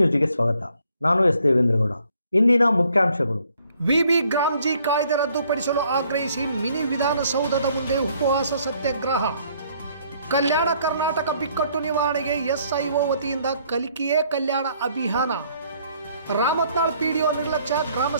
ಸ್ವಾಗತ. ನಾನು ಎಸ್ ದೇವೇಂದ್ರಗೌಡ. ಇಂದಿನ ಮುಖ್ಯಾಂಶಗಳು. ವಿಬಿ ಗ್ರಾಮ್ಜಿ ಕಾಯ್ದೆ ರದ್ದುಪಡಿಸಲು ಆಗ್ರಹಿಸಿ ಮಿನಿ ವಿಧಾನಸೌಧದ ಮುಂದೆ ಉಪವಾಸ ಸತ್ಯಾಗ್ರಹ. ಕಲ್ಯಾಣ ಕರ್ನಾಟಕ ಬಿಕ್ಕಟ್ಟು ನಿವಾರಣೆಗೆ ಎಸ್ಐಒ ವತಿಯಿಂದ ಕಲಿಕೆಯೇ ಕಲ್ಯಾಣ ಅಭಿಯಾನ. ರಾಮತ್ನಾಳ್ ಪಿಡಿಒ ನಿರ್ಲಕ್ಷ್ಯ,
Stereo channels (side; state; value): both; inverted; correlation -0.65